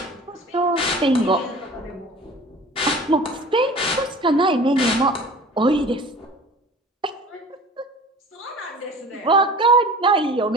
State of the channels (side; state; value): both; normal; correlation 0.42